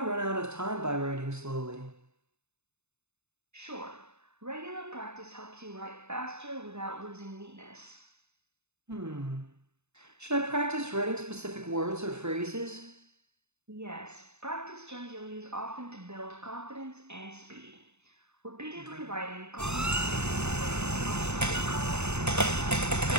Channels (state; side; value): late; left; 0.81 ms